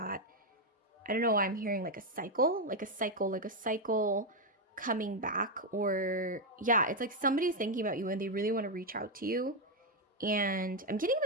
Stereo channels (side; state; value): both; normal; correlation 0.03